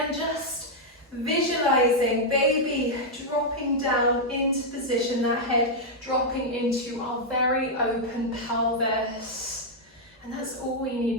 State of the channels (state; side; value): normal; both; correlation -0.03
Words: just visualizing baby dropping down into position, that head dropping into our very open pelvis. And that's all we